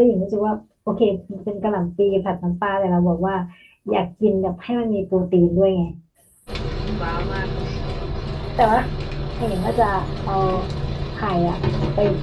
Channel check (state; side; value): identical; both; correlation 1.00